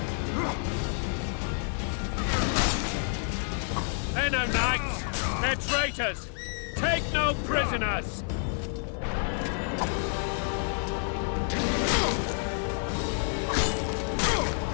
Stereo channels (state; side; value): silent; right; 56 dB below the other